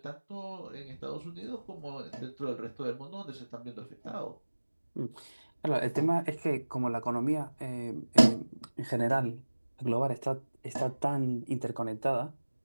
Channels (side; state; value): both; inverted; correlation -1.00